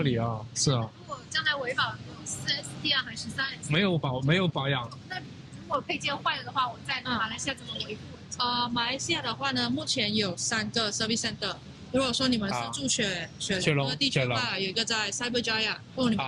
理啊，是啊。如果将来维保4S 店还是3S？没有保养。那如果配件坏了的话，我在马来西亚怎么维护？马来西亚的话呢，目前有3个 service center。如果说你们是住雪龙的地区的话，有一个在 Cyberjaya， 你们知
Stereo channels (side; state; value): both; identical; correlation 1.00